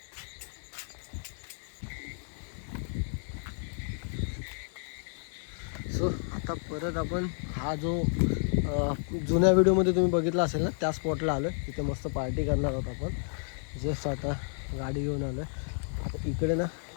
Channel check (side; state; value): right; silent; digital silence